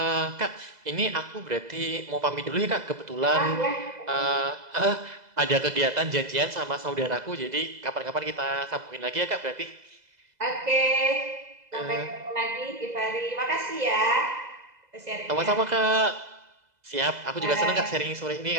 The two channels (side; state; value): left; late; 2.0 ms